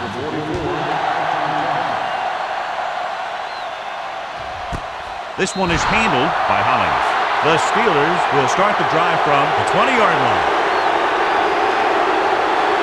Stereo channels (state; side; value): identical; both; correlation 1.00